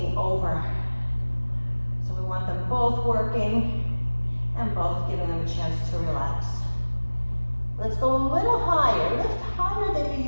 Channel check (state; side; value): inverted; both; correlation -1.00